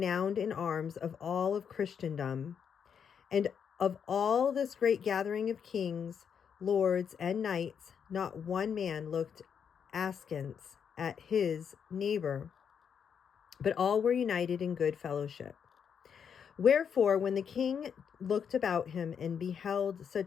in arms of all of Christendom. And of all this great gathering of kings, lords, and knights, not one man looked askance at his neighbor, but all were united in good fellowship. Wherefore, when the king looked about him and beheld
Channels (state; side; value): quieter; right; 7.4 dB